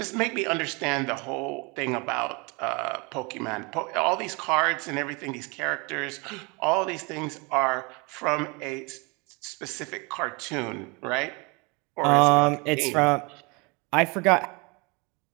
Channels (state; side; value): quieter; left; 28.8 dB